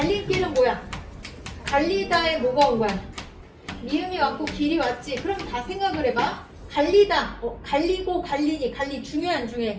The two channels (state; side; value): identical; both; correlation 1.00